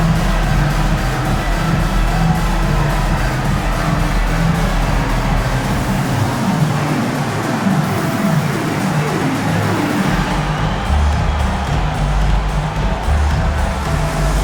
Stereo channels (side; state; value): both; identical; correlation 1.00